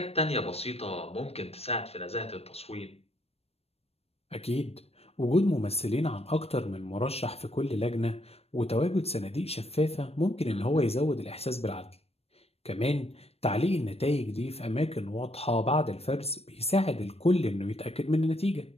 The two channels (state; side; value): late; right; 0.29 ms